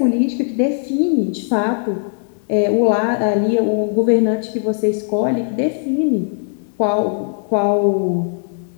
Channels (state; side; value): silent; right; digital silence